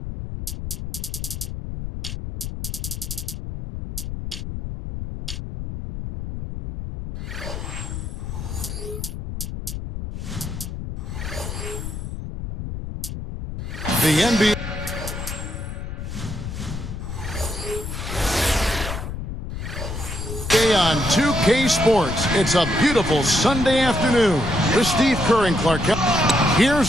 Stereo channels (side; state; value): left; noise; rumble, 7 dB below the sound